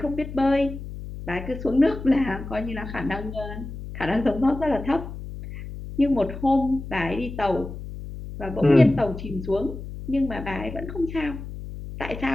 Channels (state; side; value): noise; left; hum, 10 dB below the sound